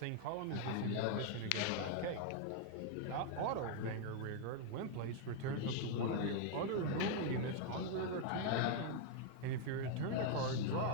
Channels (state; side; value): different; both; correlation 0.00